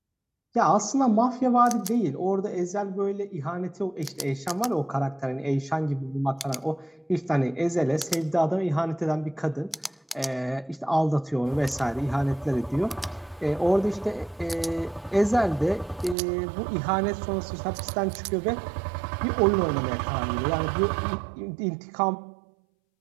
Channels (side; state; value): left; drops out; at 16.2 s